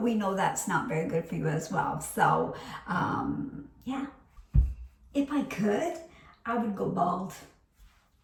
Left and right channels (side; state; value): both; identical; correlation 1.00